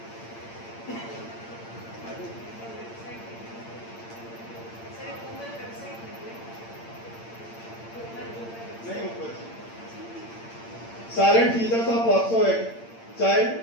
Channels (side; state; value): right; late; 8.8 ms